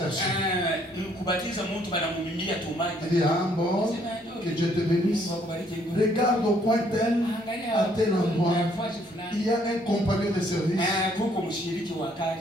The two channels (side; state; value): both; normal; correlation 0.66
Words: Il dit, ah bon, que Dieu te bénisse. Regarde au coin tel, à tel endroit, il y a un compagnon de service.